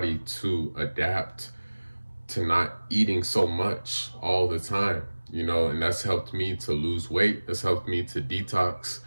to adapt to not eating so much all the time, and that's helped me to lose weight. That's helped me to detox,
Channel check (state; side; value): inverted; both; correlation -1.00